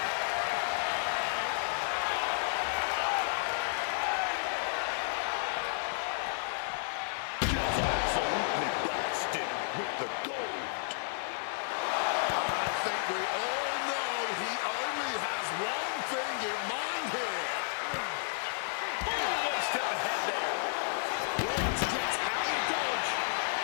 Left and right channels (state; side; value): silent; right; 56 dB below the other